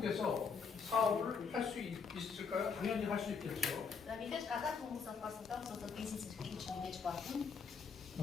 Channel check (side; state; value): right; quieter; 5.7 dB